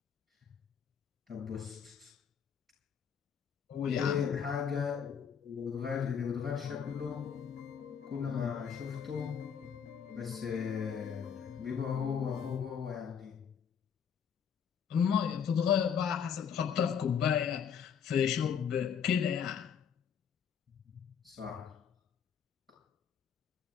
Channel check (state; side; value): quieter; right; 7.5 dB